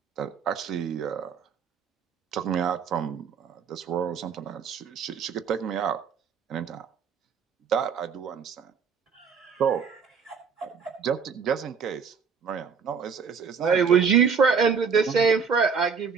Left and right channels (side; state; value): left; quieter; 6.2 dB